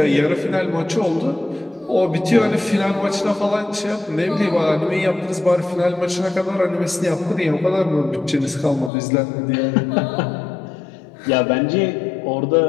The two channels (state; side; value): drops out; right; at 8.9 s